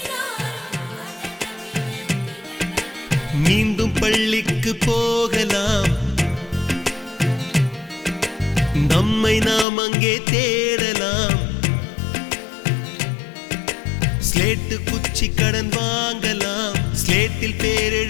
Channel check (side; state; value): right; drops out; at 9.7 s